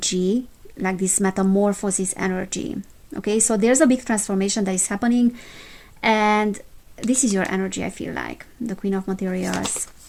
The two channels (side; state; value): both; identical; correlation 1.00